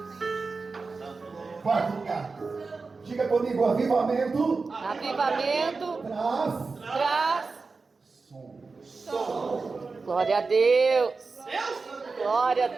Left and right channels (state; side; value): quieter; left; 4.2 dB